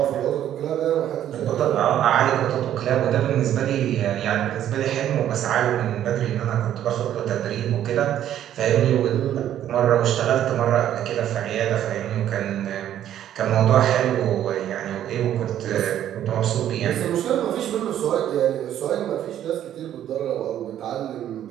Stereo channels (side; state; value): left; quieter; 11.2 dB